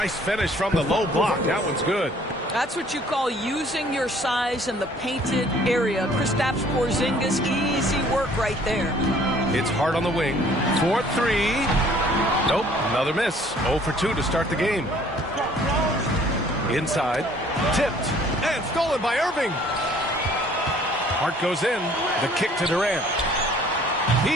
finish from the low block. That one's good. That's what you call using your size in the painted area. Kristaps Porzingis, easy work right there. It's Hart on the wing. 4-3. Nope, another miss. 0 for 2 to start the game. Inside. Tipped. And stolen by Irving. Hart goes in. The kick to Durant.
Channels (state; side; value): normal; both; correlation 0.57